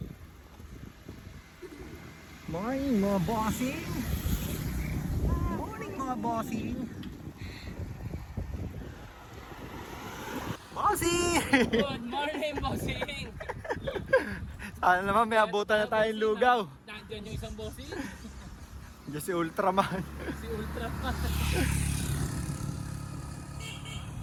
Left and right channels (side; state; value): both; identical; correlation 1.00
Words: Morning mga bossing. Morning mga bossing. Bossing! Good morning, bossing! Sana naman may abutan na tayong lugaw. Nandiyan yung isang bossing. Diyan si Ultraman. Si Ultraman.